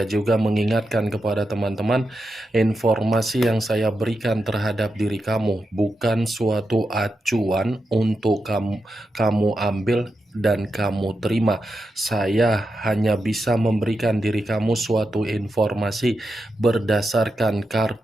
juga mengingatkan kepada teman-teman, informasi yang saya berikan terhadap diri kamu bukan suatu acuan untuk kamu ambil dan kamu terima. Saya hanya bisa memberikan diri kamu suatu informasi berdasarkan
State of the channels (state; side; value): normal; both; correlation 0.88